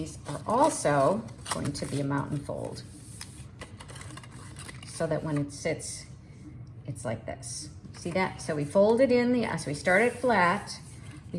are also going to be a mountain fold, so that when it sits, it's like this. See that? So we fold it in, so we start it flat, we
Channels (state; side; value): identical; both; correlation 1.00